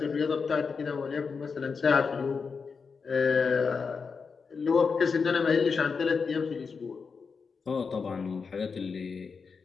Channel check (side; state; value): right; quieter; 5.3 dB